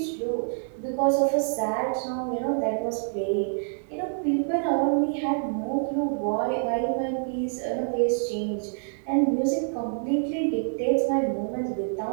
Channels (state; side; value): silent; left; digital silence